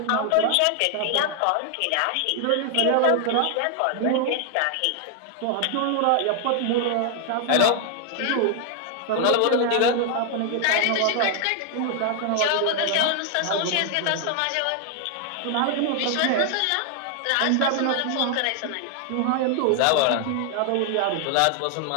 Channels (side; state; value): both; different; correlation 0.00